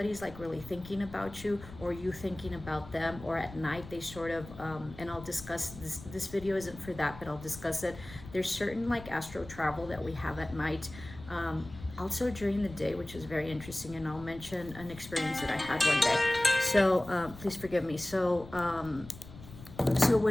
like really thinking about you, or you thinking about them, or at night they sort of and I'll discuss this video isn't for that, but I'll discuss it. There's certain like astral travel that we have at night. Also during the day, which is very interesting, and I'll mention an experience that I had one day. So please forgive me. So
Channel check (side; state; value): left; noise; rumble, 16 dB below the sound